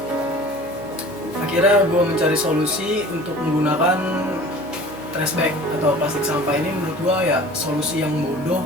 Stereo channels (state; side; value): noise; right; hum, 22 dB below the sound